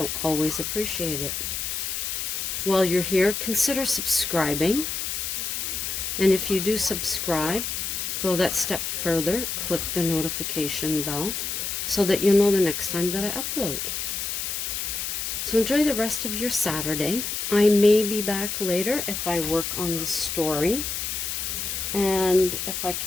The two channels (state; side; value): noise; left; hiss, 3 dB below the sound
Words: always appreciated. While you're here, consider subscribing. And if you do subscribe, go that step further, click the notification bell so that you'll know the next time that I upload. So enjoy the rest of your Saturday. I may be back later if I work on the story. And if I